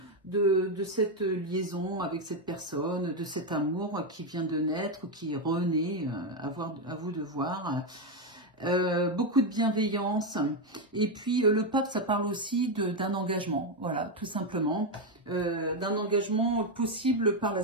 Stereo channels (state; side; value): normal; both; correlation 0.06